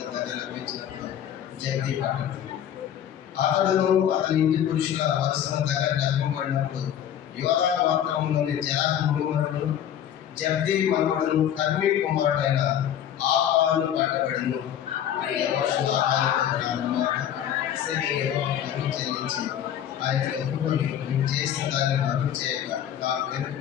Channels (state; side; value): quieter; right; 10.1 dB